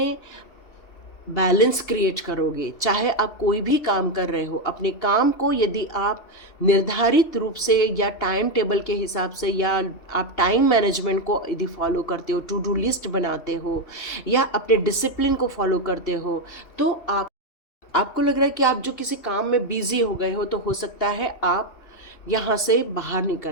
बैलेंस क्रिएट करोगे, चाहे आप कोई भी काम कर रहे हो, अपने काम को यदि आप निर्धारित रूप से या टाइम टेबल के हिसाब से, या आप टाइम मैनेजमेंट को यदि फॉलो करते हो, टू डू लिस्ट बनाते हो, या अपने डिसिप्लिन को फॉलो करते हो, तो आपको लग रहा है कि आप जो किसी काम में बिजी हो गए हो, तो हो सकता है आप यहाँ से बाहर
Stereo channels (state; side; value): late; right; 2.8 ms